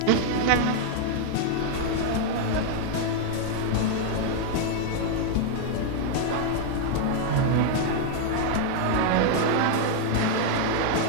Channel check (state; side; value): different; both; correlation 0.00